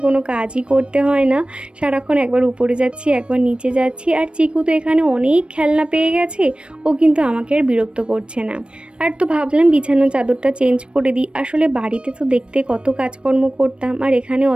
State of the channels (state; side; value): late; left; 0.057 ms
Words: কোনো কাজই করতে হয় না, সারাক্ষণ একবার উপরে যাচ্ছি একবার নিচে যাচ্ছি। আর চিকু তো এখানে অনেক খেলনা পেয়ে গেছে, ও কিন্তু আমাকে আর বিরক্ত করছে না। আর তো ভাবলাম বিছানার চাদরটা চেঞ্জ করে দিই। আসলে বাড়িতে তো দেখতে কত কাজকর্ম করতাম, আর এখানে